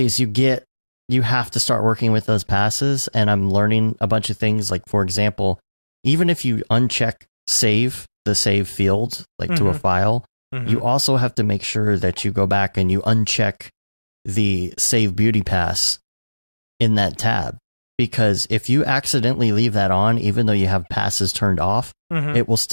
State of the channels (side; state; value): both; inverted; correlation -1.00